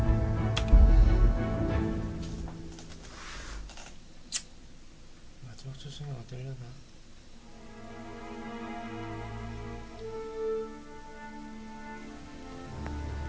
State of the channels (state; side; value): identical; both; correlation 1.00